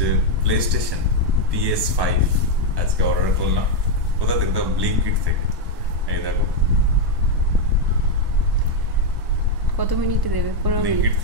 প্লে স্টেশন PS5 আজকে অর্ডার করলাম। কোথা থেকে? ব্লিঙ্কিট থেকে। এই দেখো কত মিনিটে দেবে? 15 মিনিট। ব্লিঙ্কিট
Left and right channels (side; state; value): left; late; 1.2 ms